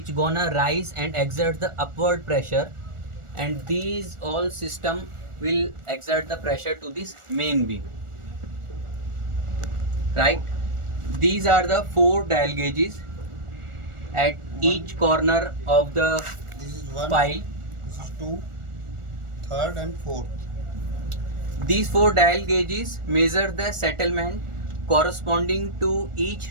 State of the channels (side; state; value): left; late; 1.4 ms